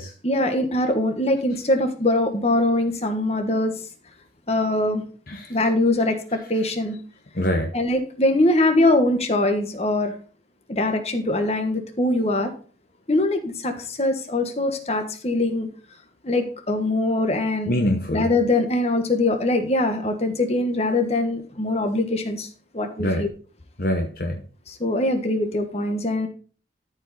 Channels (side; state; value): both; normal; correlation 0.44